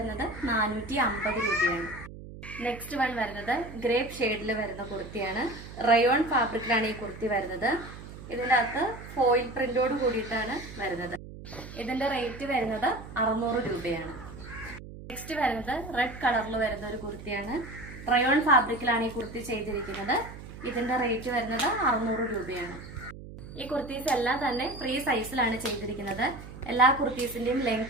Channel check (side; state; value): right; noise; hum, 14 dB below the sound